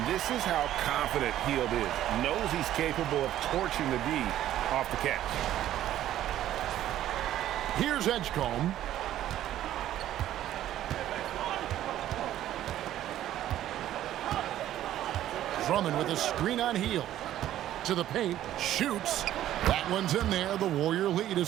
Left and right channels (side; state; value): left; quieter; 12.6 dB